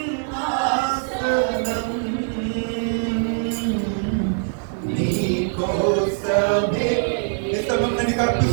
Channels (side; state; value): left; silent; digital silence